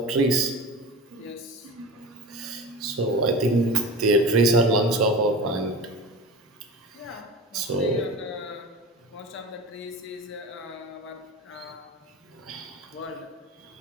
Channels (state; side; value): normal; both; correlation 0.32